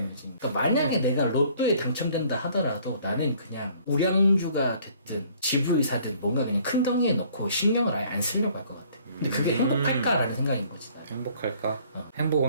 그러니까 만약에 내가 로또에 당첨된다 하더라도 나는 그냥 우량주가 됐든 집을 사든 뭔가 그냥 큰 덩이에 넣고 신경을 아예 안 쓰려고 할 것 같아. 근데 그게 행복할까라는 생각인 거지. 나는. 행복할까? 어.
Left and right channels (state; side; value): inverted; both; correlation -0.58